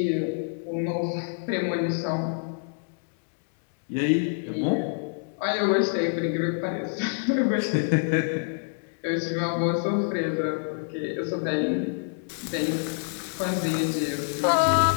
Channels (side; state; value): right; silent; digital silence